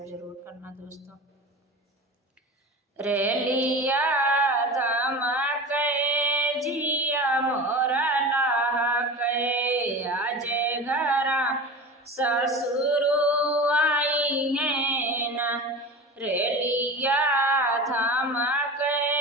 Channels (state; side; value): normal; both; correlation 0.31